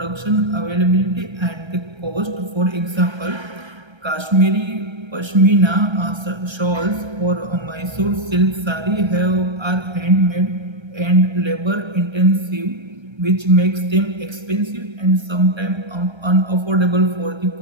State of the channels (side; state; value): left; late; 1.3 ms